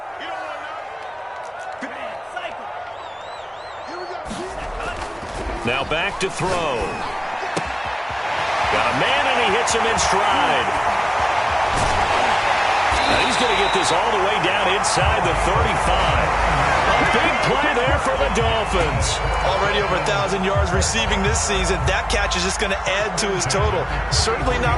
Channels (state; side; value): identical; both; correlation 1.00